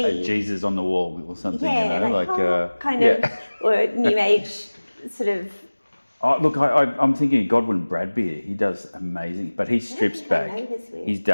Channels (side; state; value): both; inverted; correlation -1.00